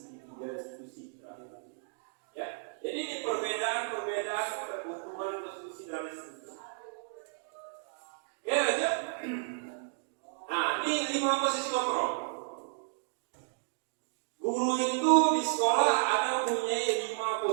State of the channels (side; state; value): left; silent; digital silence